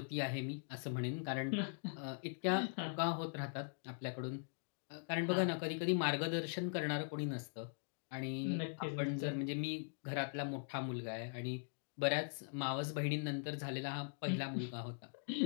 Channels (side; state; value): right; silent; digital silence